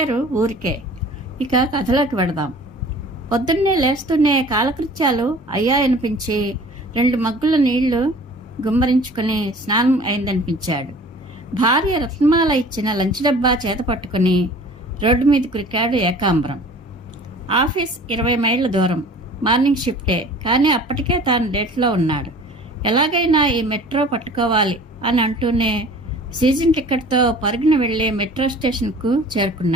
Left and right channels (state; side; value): normal; both; correlation 0.46